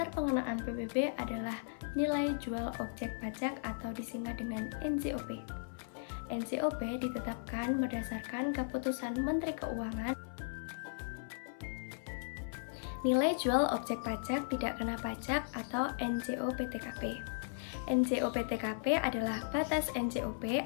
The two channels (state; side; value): silent; right; 53 dB below the other